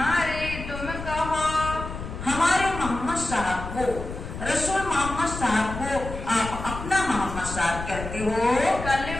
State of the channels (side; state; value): left; noise; rumble, 8 dB below the sound